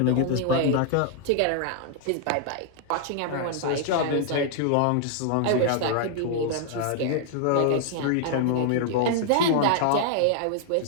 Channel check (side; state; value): both; different; correlation -0.01